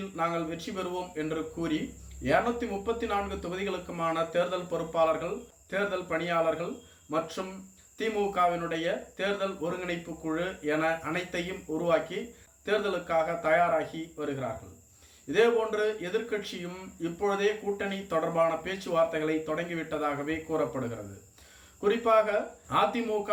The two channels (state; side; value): identical; both; correlation 1.00